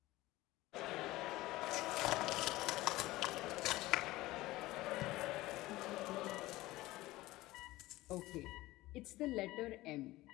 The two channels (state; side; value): quieter; right; 18.3 dB